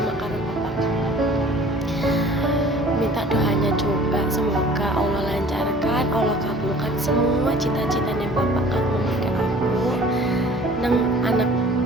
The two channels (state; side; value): normal; both; correlation 0.49